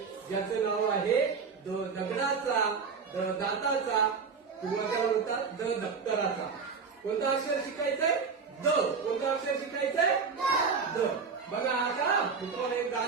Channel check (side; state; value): left; quieter; 5.4 dB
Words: ज्याचं नाव आहे दगडाचा, दाताचा, किंवा काय म्हणतात दप्तराचा. कोणतं अक्षर शिकायचंय? द. कोणतं अक्षर शिकायचंय? द. बघा आता तुम्हाला एक